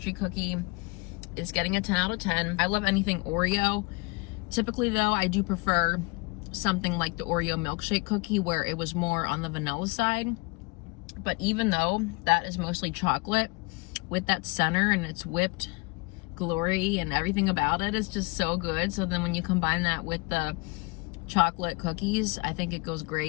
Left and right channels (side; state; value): right; quieter; 26.9 dB